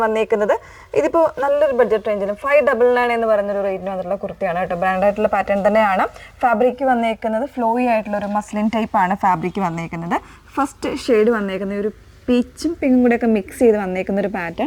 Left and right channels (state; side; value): identical; both; correlation 1.00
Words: വന്നേക്കുന്നത് ഇതിപ്പോൾ നല്ലൊരു ബഡ്ജറ്റ് റേഞ്ചിലും 599 എന്ന് പറയുന്നൊരു റേറ്റിന് വന്നിട്ടുള്ള കുർത്തിയാണ് കേട്ടോ. ബ്രാൻഡായിട്ടുള്ള പാറ്റേൺ തന്നെയാണ്. ഫാബ്രിക് വന്നേക്കുന്നത് ഫ്ലോയി ആയിട്ടുള്ള ഒരു മസ്ലിൻ ടൈപ്പാണ് ഫാബ്രിക് വന്നേക്കുന്നത്. ഫസ്റ്റ് ഷെയ്ഡ് വന്നേക്കുന്നത് ഒരു പീച്ചും പിങ്കും കൂടെയൊക്കെ മിക്സ് ചെയ്ത് വന്നേക്കുന്ന ഒരു